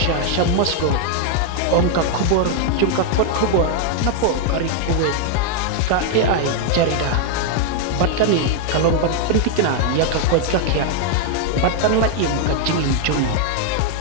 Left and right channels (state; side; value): different; both; correlation 0.00